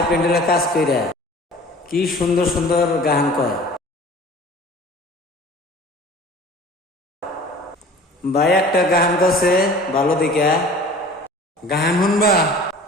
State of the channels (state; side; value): normal; both; correlation 0.44